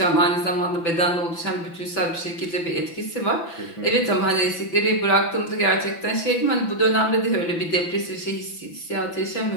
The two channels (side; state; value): right; late; 5.9 ms